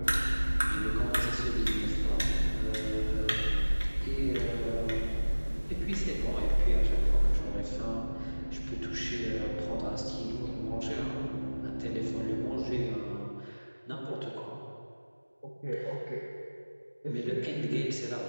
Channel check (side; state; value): both; inverted; correlation -1.00